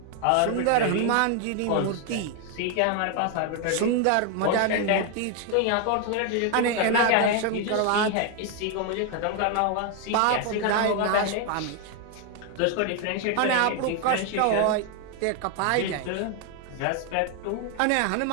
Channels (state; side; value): different; both; correlation 0.01